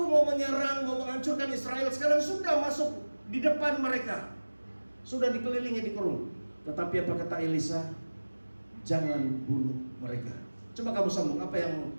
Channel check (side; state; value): both; inverted; correlation -1.00